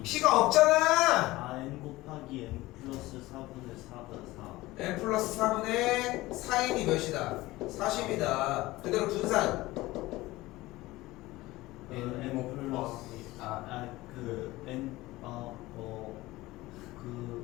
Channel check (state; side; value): quieter; right; 18.8 dB